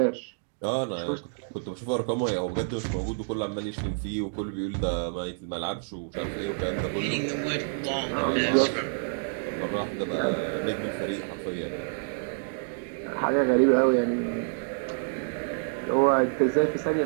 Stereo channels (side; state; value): left; silent; digital silence